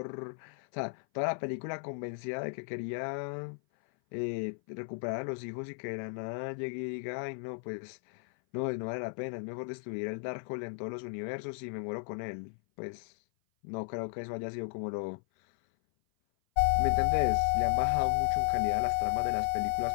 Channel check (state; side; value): silent; right; 55 dB below the other